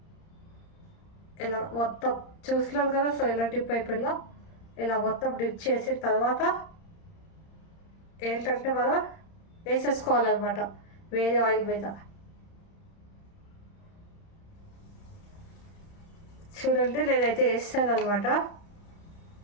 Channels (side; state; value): right; late; 31 ms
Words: ఇలా మొత్తం చూస్తున్నారు కదా, సో ఇలా డిప్ అయిపోయిందో ఇలా మొత్తం డిప్ చేసిన తర్వాత ఏంటంటే మనం వేసేసుకోవాలన్నమాట వేరే ఆయిల్ మీద. చూడండి, నేనైతే వేస్తాను అనమాట.